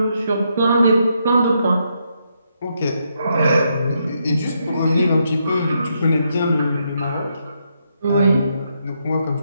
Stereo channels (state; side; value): inverted; both; correlation -0.79